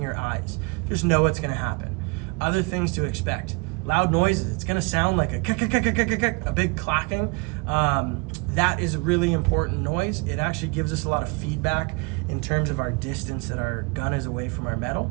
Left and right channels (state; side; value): quieter; left; 29.4 dB